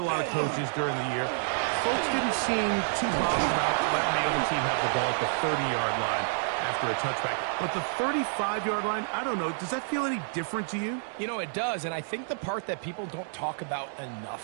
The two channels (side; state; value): left; silent; digital silence